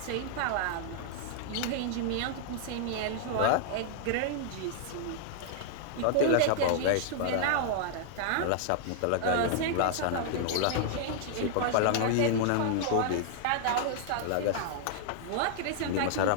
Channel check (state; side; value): different; both; correlation -0.01